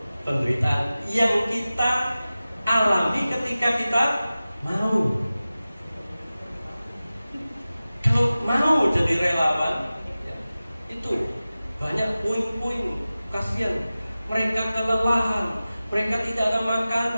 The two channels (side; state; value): both; inverted; correlation -0.96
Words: penderitaan yang kita alami ketika kita mau. Kalau mau jadi relawan, ya, itu banyak puing-puing, kasihan. Mereka kelelahan, mereka tidak ada